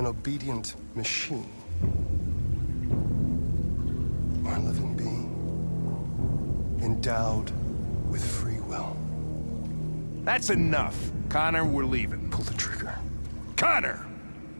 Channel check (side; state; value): both; inverted; correlation -1.00